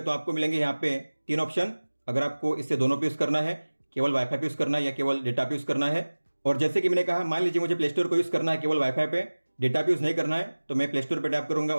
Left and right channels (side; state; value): both; inverted; correlation -1.00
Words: तो आपको मिलेंगे यहाँ पे 3 ऑप्शन, अगर आपको इससे दोनों पे यूज करना है, केवल वाईफाई पे यूज करना है या केवल डेटा पे यूज करना है। और जैसे कि मैंने कहा, मान लीजिए मुझे प्ले स्टोर को यूज करना है केवल वाईफाई पे, डेटा पे यूज नहीं करना है, तो मैं प्ले स्टोर पे टैप करूंगा